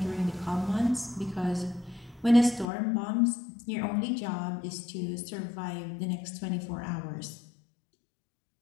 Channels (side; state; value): right; drops out; at 2.7 s